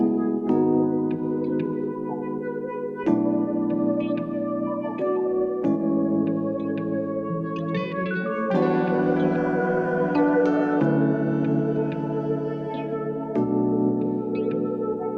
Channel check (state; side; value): identical; both; correlation 1.00